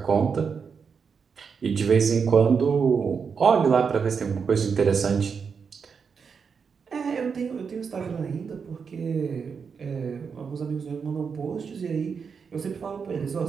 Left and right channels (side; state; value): left; quieter; 6.0 dB